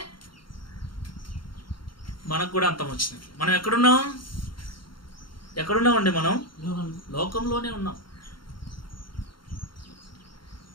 మనకు కూడా అంతం వచ్చినట్లు. మనం ఎక్కడున్నామండి? మనం లోకంలోనే ఉన్నాం.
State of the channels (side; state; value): right; late; 0.73 ms